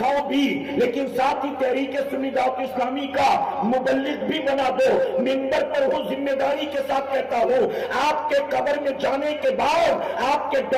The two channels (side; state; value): both; identical; correlation 1.00